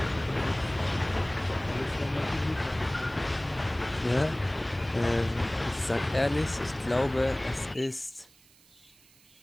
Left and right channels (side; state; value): right; noise; hiss, 27 dB below the sound